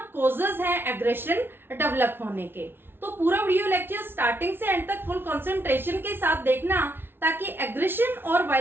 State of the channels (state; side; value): late; left; 0.11 ms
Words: कॉजेज हैं एग्रेशन डेवलप होने के। तो पूरा वीडियो लेक्चर स्टार्टिंग से एंड तक फुल कंसंट्रेशन के साथ देखना, ताकि एग्रेशन और